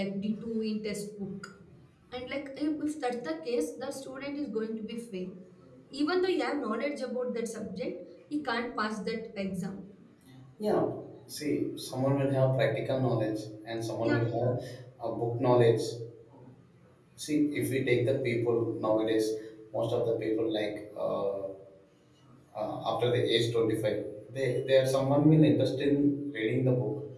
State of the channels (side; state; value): both; identical; correlation 1.00